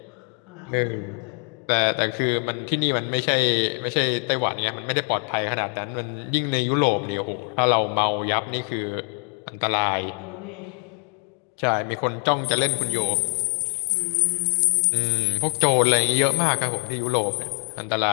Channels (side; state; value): right; quieter; 36.3 dB